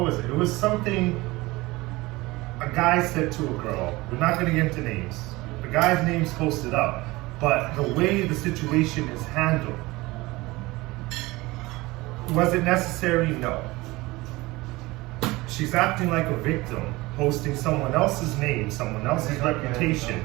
was it? It was something a guy said to a girl. We're not going to get into names. The guy's name's posted up, but the way the situation is handled, was it necessary? No. She's acting like a victim, posting someone else's name, someone else's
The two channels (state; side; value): quieter; left; 21.1 dB